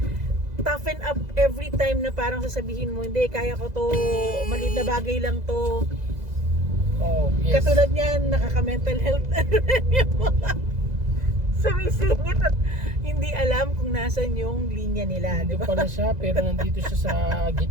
toughen up every time na parang sasabihin mo, hindi, kaya ko to, maliit na bagay lang to. Oh, yes. Katulad niyan, nakaka-mental health yung mga sumisingit at hindi alam kung nasan yung linya nila, di Hindi ba? pala siya, pero nandito siya sa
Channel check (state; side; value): late; left; 2.0 ms